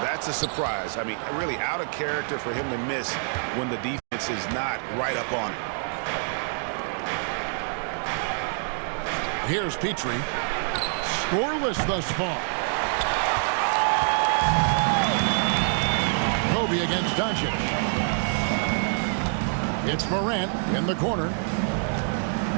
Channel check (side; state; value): left; silent; 58 dB below the other